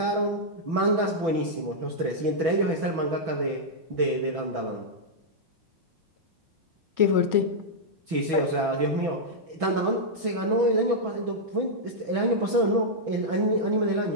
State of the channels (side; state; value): left; late; 6.1 ms